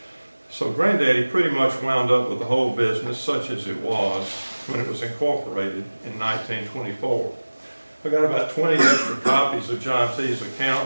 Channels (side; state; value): both; inverted; correlation -1.00